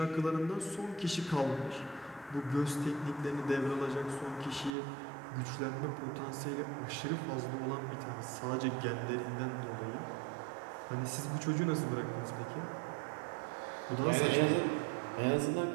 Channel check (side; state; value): left; drops out; at 4.7 s